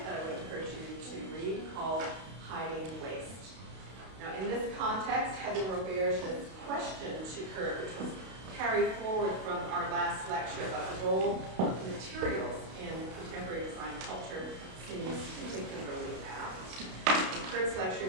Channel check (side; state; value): left; late; 32 ms